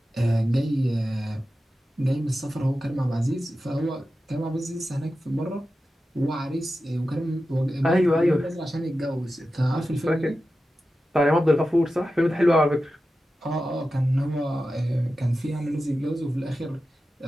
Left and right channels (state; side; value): normal; both; correlation 0.92